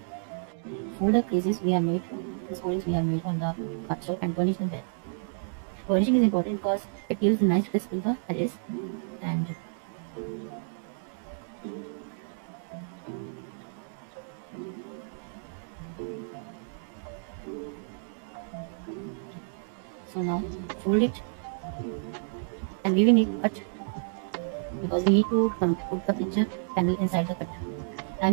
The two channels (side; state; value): left; silent; 58 dB below the other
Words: For the creases we have made, the scorings we have made on the cardstock and burnish them well. Burnishing is important because it gives a nice crisp to the edges, and so now fold it, and we will need cut because we need to put the picture panel inside the cut. I